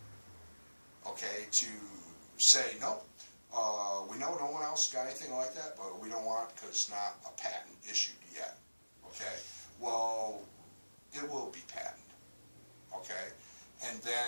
Okay, to say, nope, we know no one else got anything like that, but we don't want it because it's not a patent issued yet. Okay, well, it will be patented. Okay, and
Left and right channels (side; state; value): both; inverted; correlation -1.00